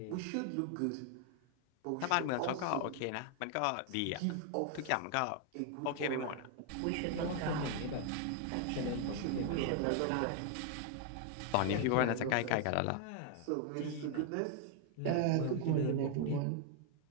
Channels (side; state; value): both; different; correlation 0.00